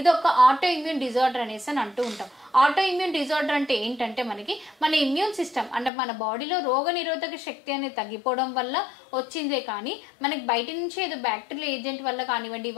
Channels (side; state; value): right; drops out; at 5.9 s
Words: ఒక ఆటో ఇమ్యూన్ డిజార్డర్ అనేసి అని అంటూ ఉంటాం. ఆటో ఇమ్యూన్ డిజార్డర్ అంటే ఏంటంటే మనకి మన ఇమ్యూన్ సిస్టమ్ అంటే మన బాడీలో రోగ నిరోధక శక్తి అనేది తగ్గిపోవడం వల్ల వచ్చిందే కానీ మనకి బయట నుంచి ఏదో బ్యాక్టీరియల్ ఏజెంట్ వల్ల కానివ్వండి,